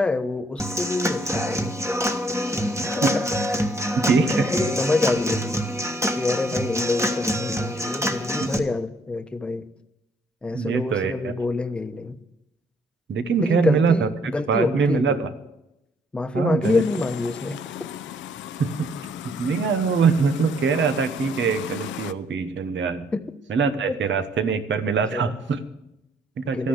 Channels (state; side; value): normal; both; correlation 0.66